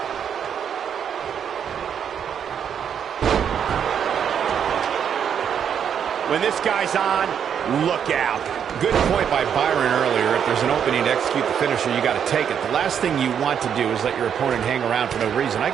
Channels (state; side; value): quieter; left; 8.2 dB